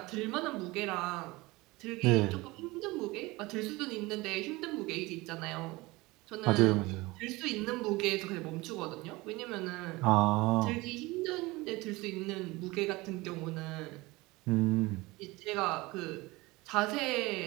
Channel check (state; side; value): quieter; left; 21.9 dB